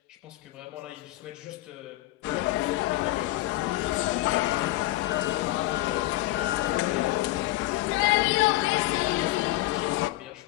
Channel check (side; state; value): right; quieter; 17.2 dB